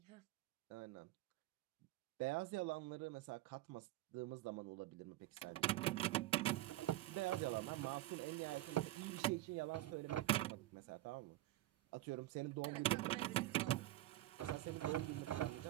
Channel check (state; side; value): quieter; left; 15.9 dB